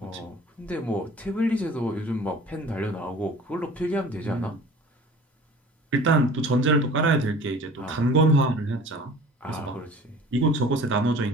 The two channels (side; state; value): both; normal; correlation 0.45